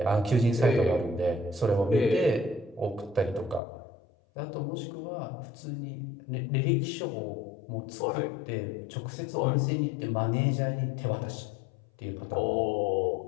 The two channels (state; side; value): drops out; right; at 3.6 s